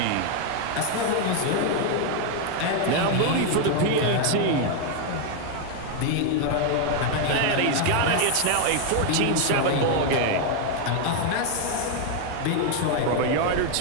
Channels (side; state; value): both; different; correlation 0.00